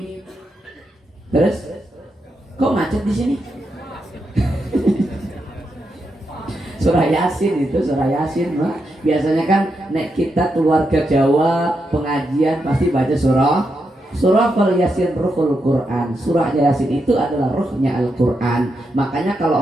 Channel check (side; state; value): both; normal; correlation 0.84